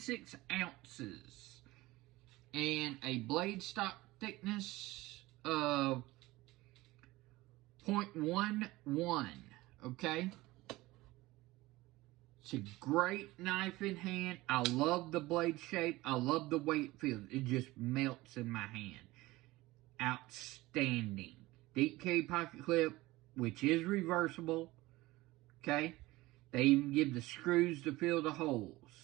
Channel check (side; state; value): left; quieter; 19.3 dB